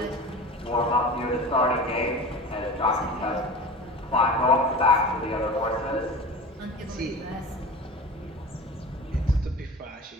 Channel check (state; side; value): normal; both; correlation 0.35